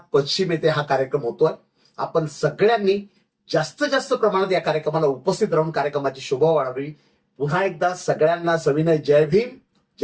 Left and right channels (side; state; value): both; identical; correlation 1.00